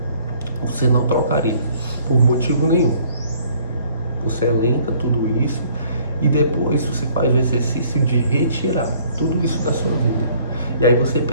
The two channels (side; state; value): both; inverted; correlation -0.59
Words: você não trocaria por motivo nenhum. Você elenca tudo isso e depois você faz o exercício de retirar tudo isso da sua vida. E aí você